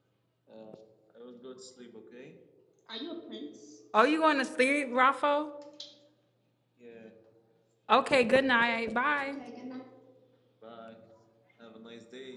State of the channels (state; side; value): identical; both; correlation 1.00